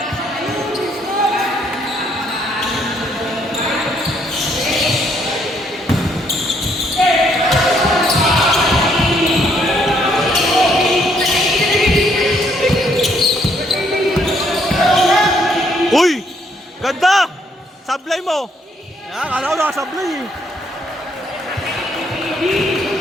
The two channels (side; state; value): both; normal; correlation 0.69